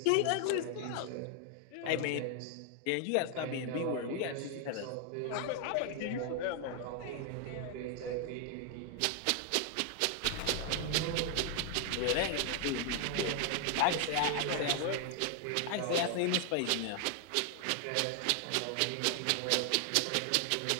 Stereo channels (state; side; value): different; both; correlation 0.00